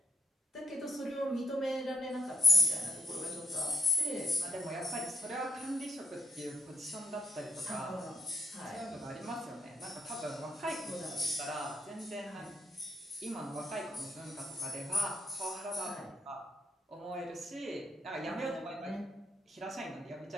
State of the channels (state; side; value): normal; both; correlation 0.74